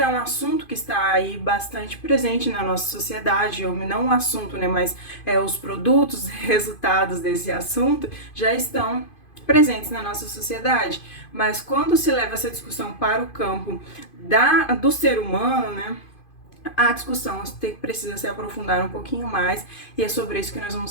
é um assunto que está aí bastante presente na nossa sociedade, ou não um assunto, né, mas os produtos, resultados desse assunto já estão presentes na nossa sociedade. Mas quando se leva essa discussão para o campo do ser humano, né, a discussão precisa se aprofundar um pouquinho mais, e é sobre isso que nós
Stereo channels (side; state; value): right; late; 2.5 ms